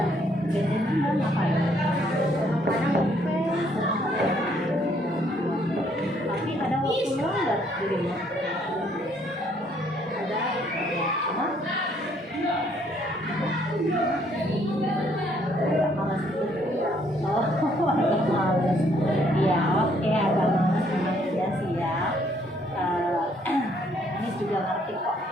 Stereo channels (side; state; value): both; normal; correlation 0.67